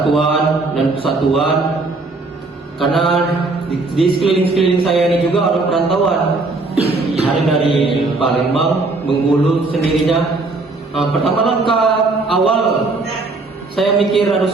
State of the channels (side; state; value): left; quieter; 3.4 dB